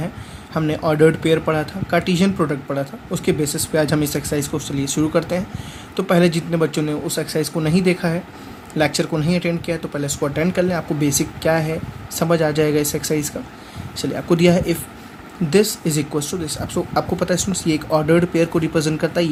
हमने ऑर्डर्ड पेयर पढ़ा था, कार्टेशियन प्रोडक्ट पढ़ा था। उसके बेसिस पे आज हम इस एक्सरसाइज को चलिए शुरू करते हैं। तो पहले जितने बच्चों ने उस एक्सरसाइज को नहीं देखा है, लेक्चर को नहीं अटेंड किया है, तो पहले इसको अटेंड कर लें। आपको बेसिक क्या है समझ आ जाएगा इस एक्सरसाइज का। चलिए, आपको दिया है if this is equal to this. आपको पता है स्टूडेंट्स, ये एक ऑर्डर्ड पेयर को रिप्रेजेंट करता है,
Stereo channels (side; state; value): both; identical; correlation 1.00